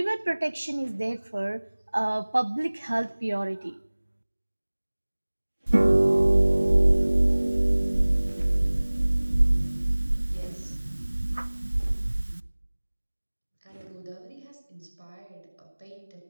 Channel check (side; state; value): both; inverted; correlation -1.00